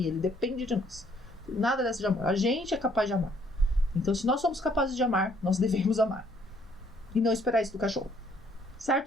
Ele depende de nós. Nada dessa de amor. A gente é capaz de amar. Então, se nós somos capazes de amar, nós devemos amar. E não esperar isso do cachorro.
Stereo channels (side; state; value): both; normal; correlation 0.65